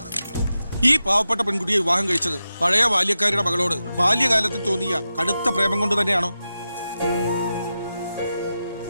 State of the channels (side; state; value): both; inverted; correlation -0.91